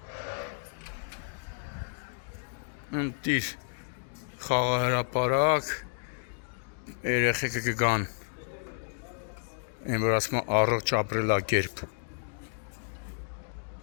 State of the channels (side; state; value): right; silent; digital silence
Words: Ընտիր խաղահրապարակ երեխեքը կգան այն որ ասում են առողջ ապրելակերպ